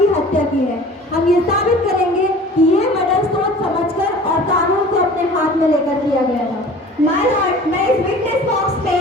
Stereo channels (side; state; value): both; normal; correlation 0.44